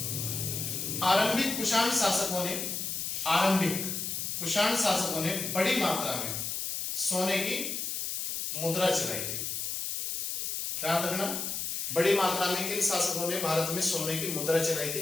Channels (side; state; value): left; noise; hiss, 3 dB below the sound